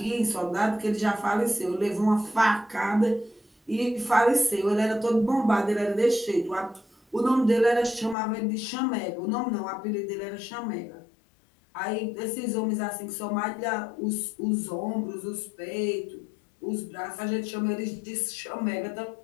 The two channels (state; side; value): drops out; right; at 8.2 s